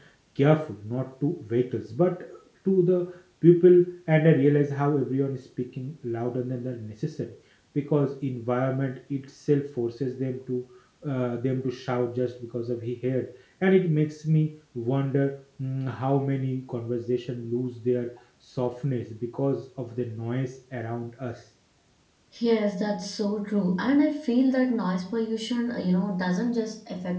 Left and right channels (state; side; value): identical; both; correlation 1.00